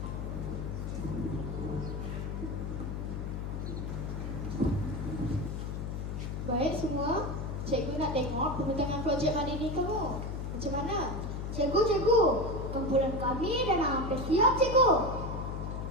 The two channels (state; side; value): noise; left; hum, 4 dB below the sound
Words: Baik semua, cikgu nak tengok pembentangan projek Madini kamu. Macam mana? Cikgu, kumpulan kami dah hampir siap, cikgu.